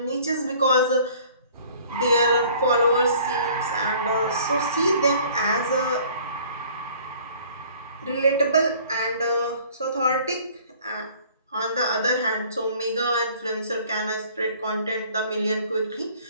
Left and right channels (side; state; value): both; inverted; correlation -0.53